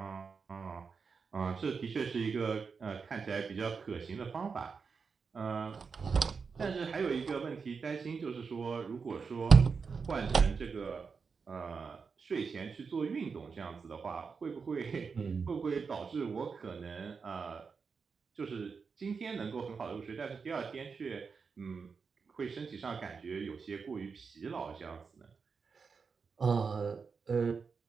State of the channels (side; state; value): left; quieter; 5.4 dB